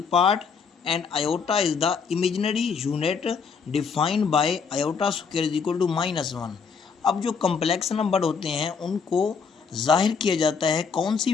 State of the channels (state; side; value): quieter; right; 5.7 dB